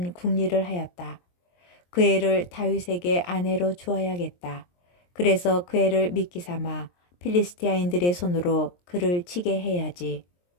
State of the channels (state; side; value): late; right; 23 ms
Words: 궁리를 하였다. 그 애를 다윗에게 아내로 주어야겠다. 그래서 그 애를 미끼 삼아 필리스티아인들의 손으로 그를 치게 해야지.